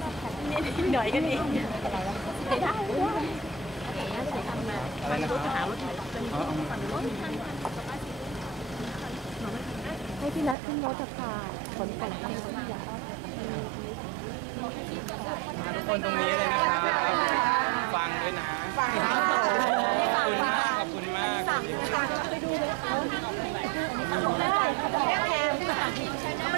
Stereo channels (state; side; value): drops out; left; at 10.6 s